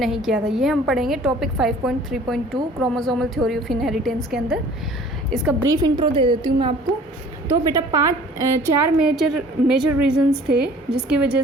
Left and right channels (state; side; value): normal; both; correlation 0.50